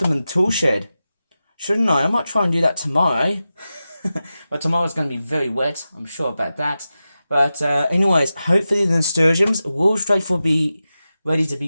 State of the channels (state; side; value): inverted; both; correlation -0.93